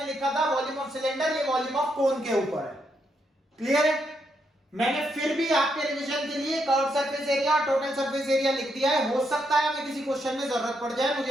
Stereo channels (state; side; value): normal; both; correlation 0.79